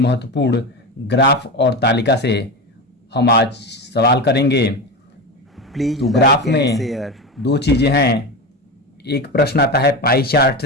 ग्राफ और तालिका से हम आज सवाल करेंगे। प्लीज तो ग्राफ लाइक एंड में शेयर। दो चीज़ें हैं, एक प्रश्न आता है पाई चार्ट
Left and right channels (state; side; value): normal; both; correlation 0.21